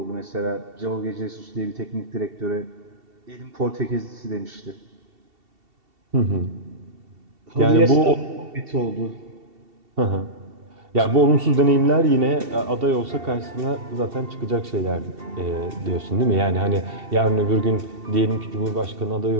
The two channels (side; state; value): left; late; 2.7 ms